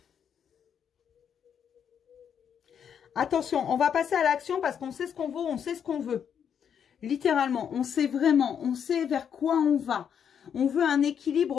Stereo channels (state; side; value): quieter; right; 8.0 dB